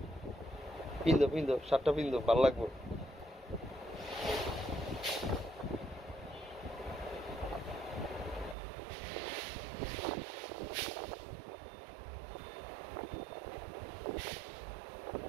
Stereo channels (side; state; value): left; drops out; at 8.6 s